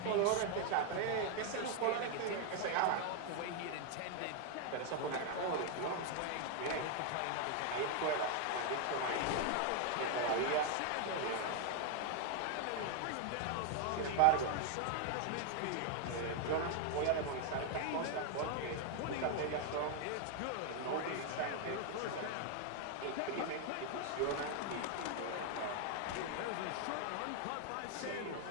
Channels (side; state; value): both; different; correlation 0.00